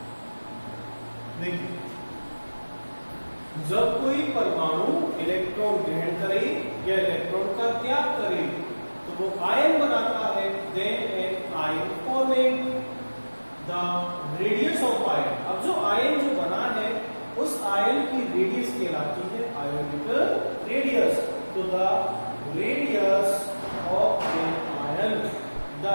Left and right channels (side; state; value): both; inverted; correlation -1.00